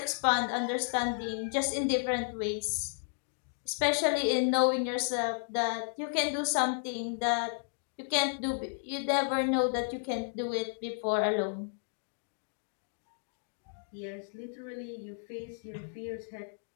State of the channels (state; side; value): silent; right; digital silence